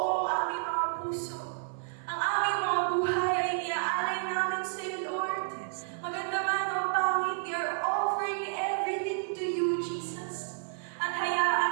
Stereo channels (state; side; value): silent; left; 57 dB below the other